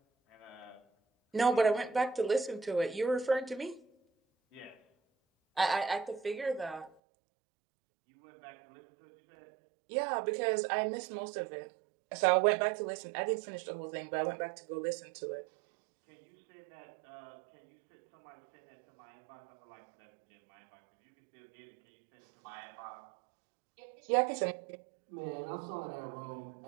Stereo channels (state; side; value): drops out; left; at 6.9 s